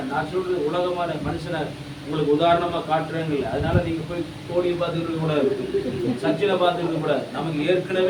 நான் சொல்றது உலகமான மனுஷனை உங்களுக்கு உதாரணமா காட்டுறேங்கல்ல. அதனால நீங்க போய் கோலியை பார்த்துக்கிட்டு கூடாது, சச்சினை பார்த்துக்கிட்டு கூடாது. நமக்கு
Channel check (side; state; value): both; identical; correlation 1.00